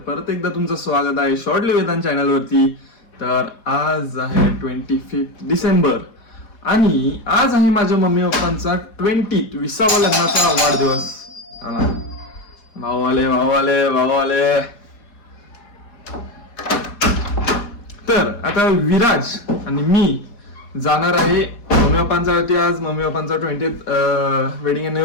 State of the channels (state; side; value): late; right; 4.1 ms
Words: परत एकदा तुमचं स्वागत आहे शॉर्टली वेदांत चॅनलवरती. तर आज आहे 25 डिसेंबर आणि आज आहे माझ्या मम्मी पप्पांचा 20वा लग्नाचा वाढदिवस. भाऊ आले भाऊ आले भाऊ आले. तर आता विराज आणि मी जाणार आहे मम्मी पप्पांसाठी. आज मम्मी पप्पांचा 20th वेडिंग